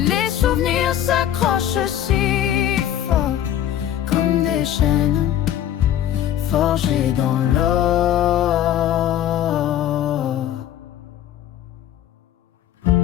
les souvenirs s'accrochent si fort, comme des chaînes forgées dans l'or.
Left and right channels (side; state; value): right; quieter; 11.1 dB